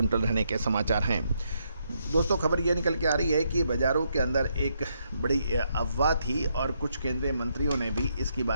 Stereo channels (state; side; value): inverted; both; correlation -0.77